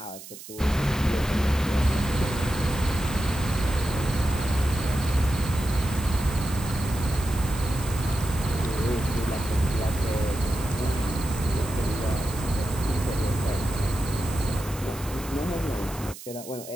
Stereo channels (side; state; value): right; noise; hiss, 15 dB below the sound